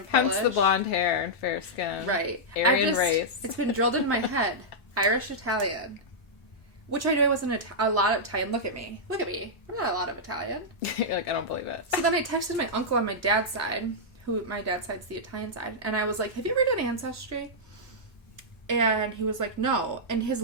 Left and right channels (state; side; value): normal; both; correlation -0.09